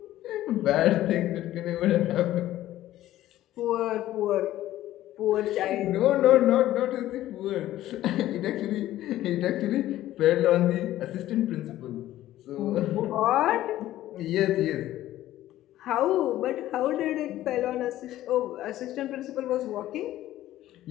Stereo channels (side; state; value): right; quieter; 14.2 dB